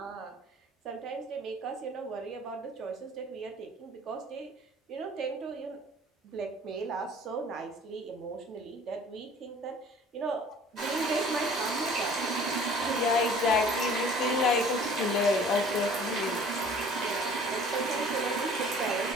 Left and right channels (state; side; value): normal; both; correlation 0.50